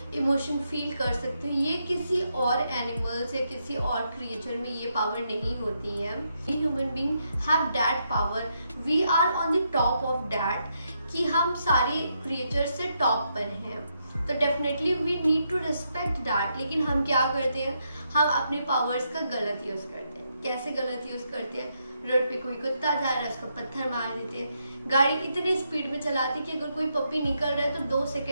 इमोशन फील कर सकते हो। ये किसी और एनिमल्स या किसी और क्रिएचर में ये पावर नहीं होती है। We human being have that power, we are on the top of that, कि हम सारे क्रिएचर से टॉप पर हैं। तो definitely we need to respect that. लेकिन हम क्या करते हैं, हम अपनी पावर्स का गलत यूज़ करते हैं। कैसे गलत यूज़ करते हैं? रोड पे कोई कुत्ता जा रहा है उसको पत्थर मार देते हैं। गाड़ी इतनी स्पीड में चलाती कि अगर कोई पपी निकल रहा है तो 2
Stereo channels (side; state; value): both; inverted; correlation -0.79